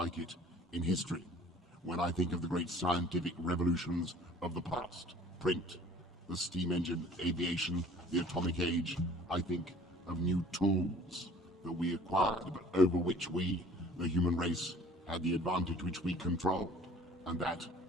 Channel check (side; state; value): both; normal; correlation 0.51